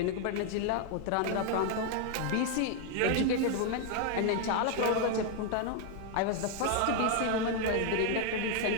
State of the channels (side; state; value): both; different; correlation 0.00